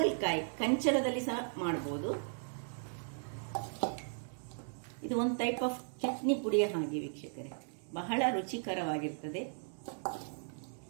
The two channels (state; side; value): silent; left; digital silence